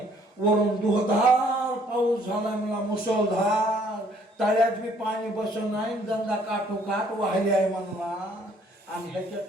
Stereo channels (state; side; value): normal; both; correlation 0.62